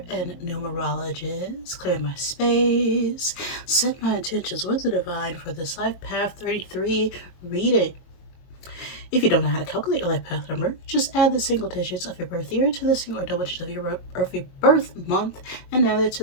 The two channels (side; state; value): right; late; 22 ms